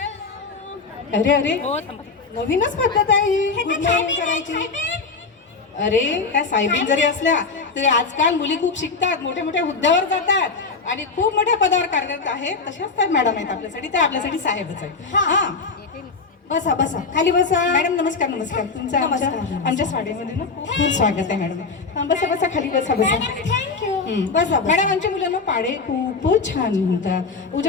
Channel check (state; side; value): quieter; right; 4.4 dB